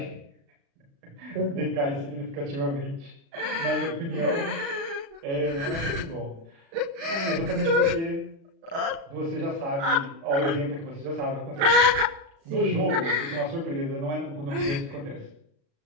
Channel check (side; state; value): left; late; 36 ms